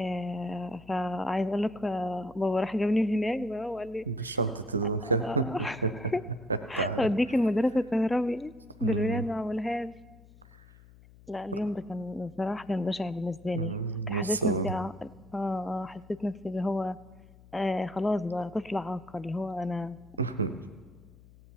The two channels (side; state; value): left; noise; hum, 23 dB below the sound